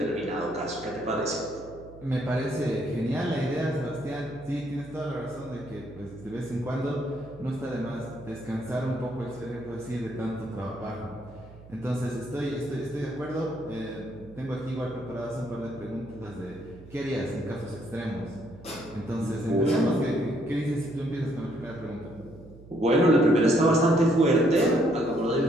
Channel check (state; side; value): noise; right; hum, 19 dB below the sound